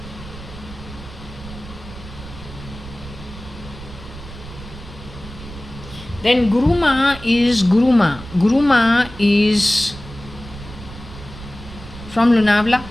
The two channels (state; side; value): noise; right; rumble, 14 dB below the sound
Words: Then Guruma is Guruma. Guruma is from Lunavla.